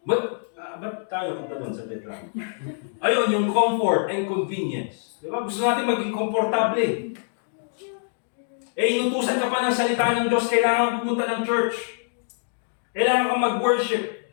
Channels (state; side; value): silent; right; digital silence